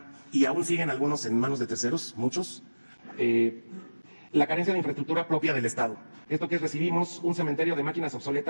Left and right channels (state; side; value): inverted; both; correlation -1.00